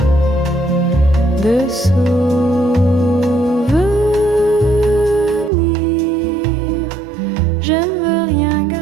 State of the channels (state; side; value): drops out; left; at 5.5 s